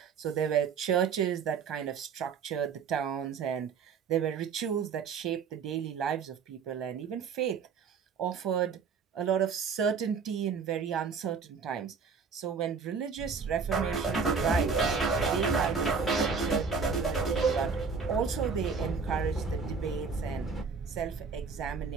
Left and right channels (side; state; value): left; quieter; 5.6 dB